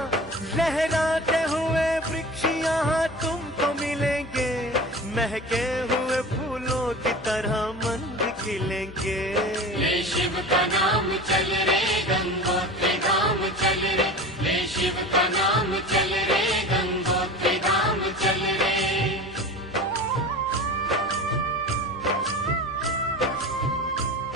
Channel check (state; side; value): normal; both; correlation 0.34